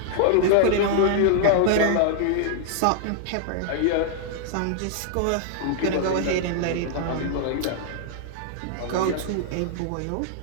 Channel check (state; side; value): different; both; correlation -0.01